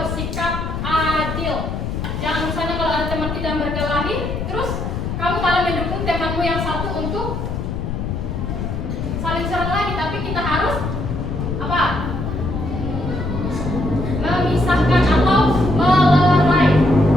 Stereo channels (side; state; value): left; noise; rumble, 4 dB below the sound